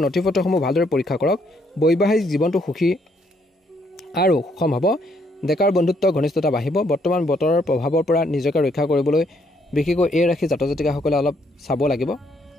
নথিপত্ৰসমূহ ভালদৰে পৰীক্ষা কৰক। বৈবাহিক জীৱনটো সুখী আৰু সুষম হ'ব। ডেকাৰ বন্ধুত্ব ঘনিষ্ঠতা বাঢ়িব। বৰ্তমান বতৰৰ প্ৰভাৱৰ পৰা নিজকে ৰক্ষা কৰিবলৈ বিশেষকৈ এই ৰাশি জাতক জাতিকাসকলে অলপ চাব লাগিব।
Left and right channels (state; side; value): normal; both; correlation 0.71